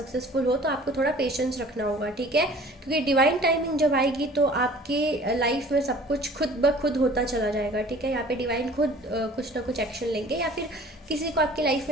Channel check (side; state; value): both; normal; correlation 0.48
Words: हो, तो आपको थोड़ा पेशेंस रखना होगा, ठीक है। क्योंकि डिवाइन टाइमिंग जब आएगी तो आपके लाइफ में सब कुछ खुद ब खुद होता चला जाएगा, ठीक है। यहाँ पे डिवाइन खुद कुछ ना कुछ एक्शन लेंगे या फिर किसी को आपकी लाइफ